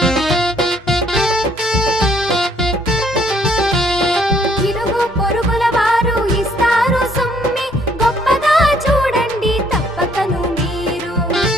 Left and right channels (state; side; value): normal; both; correlation 0.64